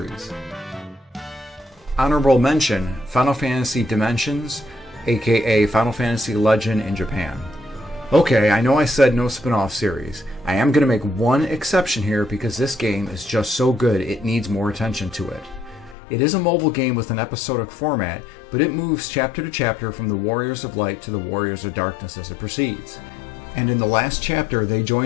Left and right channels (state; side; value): drops out; right; at 16.0 s